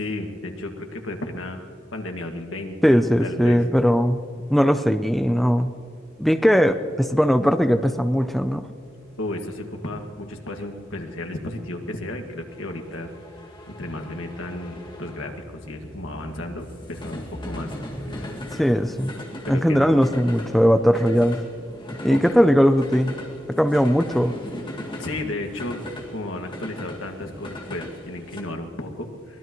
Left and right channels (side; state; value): both; normal; correlation 0.92